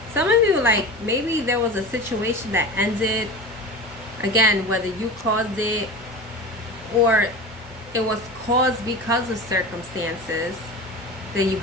Some of you, like, maybe there was a situation that ended, again, whether you caused it or it was caused because of circumstances that you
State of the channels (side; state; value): both; normal; correlation 0.31